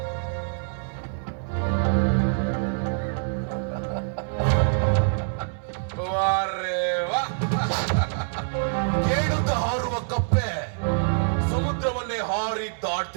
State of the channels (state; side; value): silent; left; 61 dB below the other